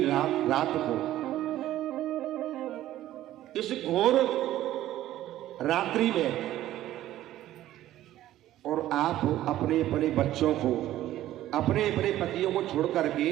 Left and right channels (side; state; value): left; quieter; 13.8 dB